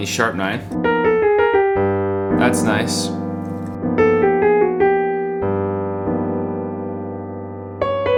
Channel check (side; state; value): both; identical; correlation 1.00